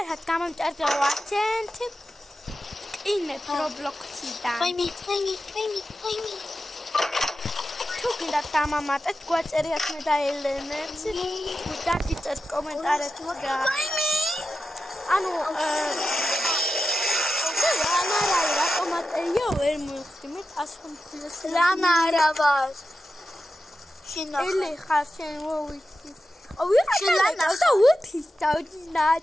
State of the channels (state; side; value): normal; both; correlation 0.91